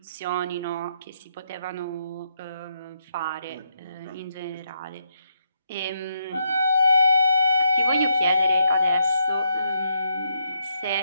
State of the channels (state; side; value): inverted; both; correlation -0.78